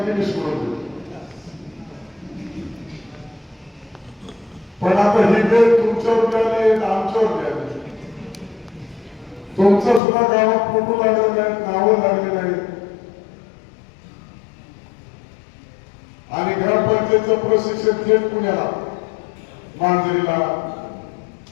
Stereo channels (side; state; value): right; drops out; at 10.0 s